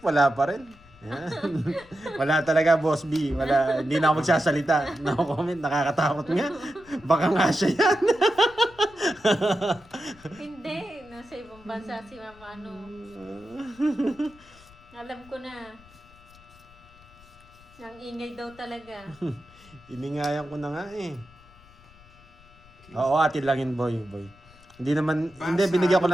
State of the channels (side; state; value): left; noise; rumble, 25 dB below the sound